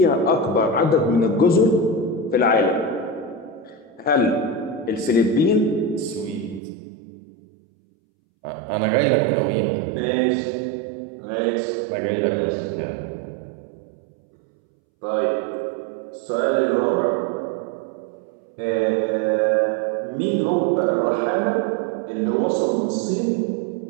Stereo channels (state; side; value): drops out; left; at 6.6 s